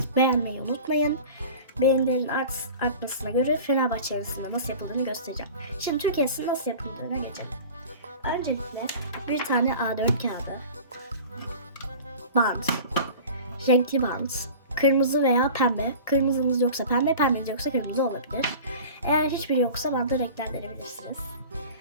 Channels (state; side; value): inverted; both; correlation -0.38